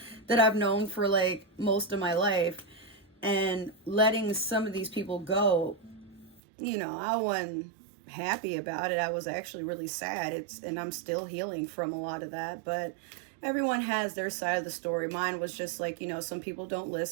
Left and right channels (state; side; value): drops out; left; at 6.4 s